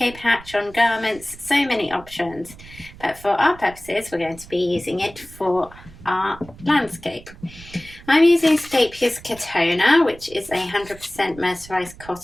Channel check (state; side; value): noise; right; rumble, 19 dB below the sound